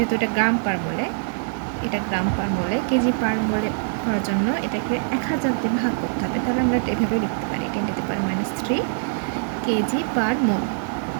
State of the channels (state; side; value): silent; left; digital silence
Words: এটা গ্রাম পার মোলে। কেজি পার মোলে করার জন্য এটাকে 1000 দিয়ে ভাগ করতে হবে। তাহলে আমরা এভাবে লিখতে পারি 10⁻³ কেজি পার মোল।